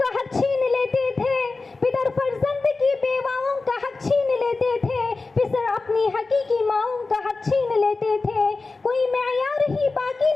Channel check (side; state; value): right; quieter; 3.8 dB